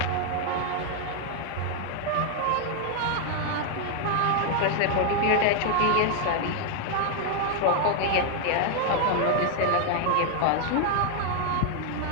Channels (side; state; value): both; different; correlation 0.00